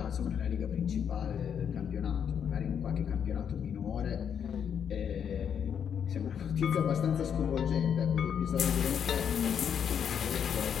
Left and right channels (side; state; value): right; quieter; 8.0 dB